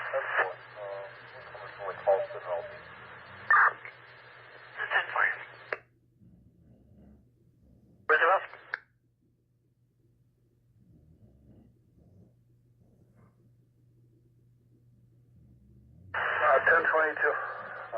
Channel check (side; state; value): both; identical; correlation 1.00